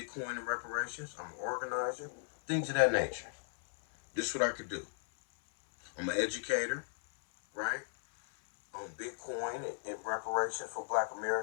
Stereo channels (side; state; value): right; silent; 54 dB below the other